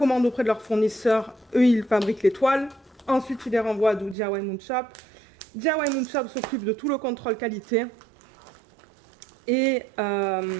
auprès de leurs fournisseurs, eux ils fabriquent les toiles, ensuite ils les renvoient à DIY Moonshop. DIY Moonshop s'occupe de tout le contrôle qualité et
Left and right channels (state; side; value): drops out; left; at 4.2 s